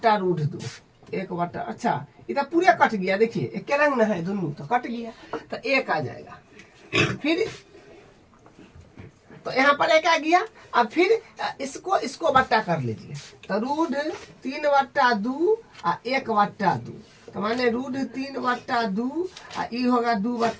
1/, अच्छा इधर पूरे कट गया, देखिए एक के रंग न है दोनों, तो कट गया, तो 1 आ जाएगा। फिर तो यहाँ पर 1 आ गया। अब फिर इसको बट्टा कर लीजिए, तो √3/2 और 1/2, तो माने √3/2 और ई होगा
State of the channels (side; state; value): both; identical; correlation 1.00